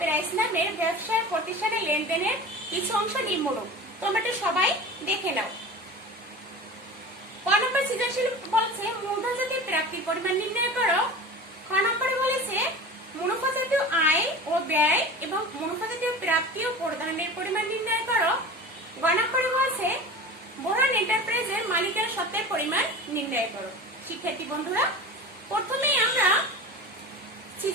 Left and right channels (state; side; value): normal; both; correlation 0.34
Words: নামের ব্যবসায় প্রতিষ্ঠানের লেনদেনের কিছু অংশ নিম্নরূপ। তোমরা এটা সবাই দেখে নাও। ক নম্বর সৃজনশীল বলছে মূলধন জাতীয় প্রাপ্তির পরিমাণ নির্ণয় করো। খ নম্বরে বলেছে মুনাফা জাতীয় আয় ও ব্যয় এবং মুনাফা জাতীয় প্রাপ্তি ও প্রদানের পরিমাণ নির্ণয় করো। গ নম্বরে বলছে বোরহান এন্টারপ্রাইজের মালিকানা সত্ত্বের পরিমাণ নির্ণয় করো। শিক্ষার্থী বন্ধুরা, প্রথমেই আমরা